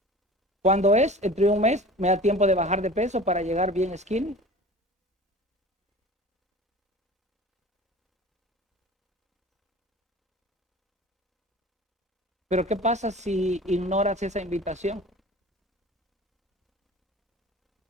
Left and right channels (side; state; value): both; normal; correlation 0.40